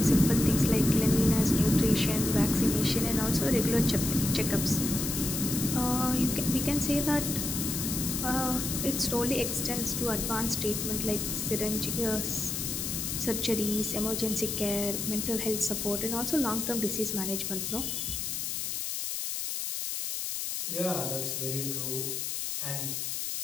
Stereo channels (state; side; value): noise; left; hiss, 3 dB below the sound